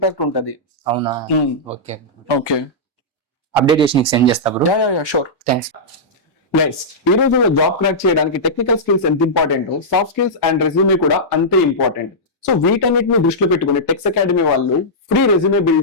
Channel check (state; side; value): normal; both; correlation -0.12